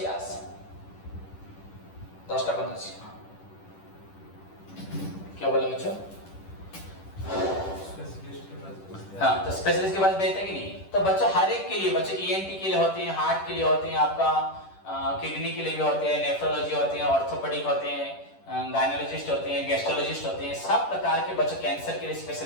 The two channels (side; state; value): right; late; 10 ms